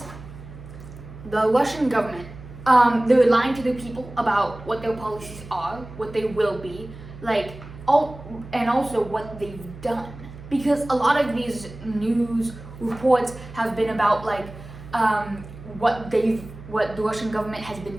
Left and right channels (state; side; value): noise; right; hum, 16 dB below the sound